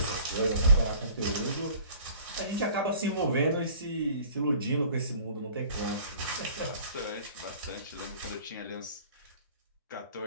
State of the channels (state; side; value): inverted; both; correlation -0.49